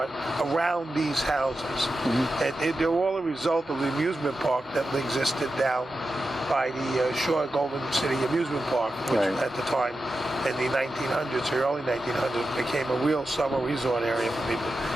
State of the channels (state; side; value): normal; both; correlation 0.91